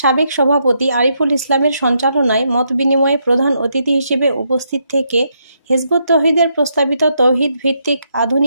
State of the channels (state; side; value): inverted; both; correlation -0.78